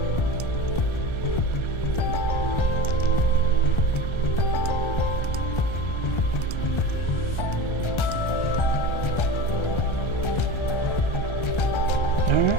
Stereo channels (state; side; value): late; right; 1.3 ms